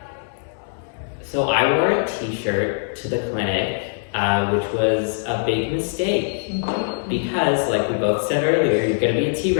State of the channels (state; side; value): silent; right; digital silence